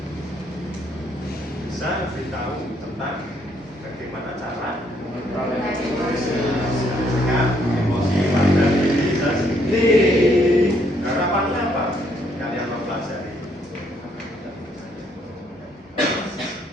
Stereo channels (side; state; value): both; normal; correlation 0.70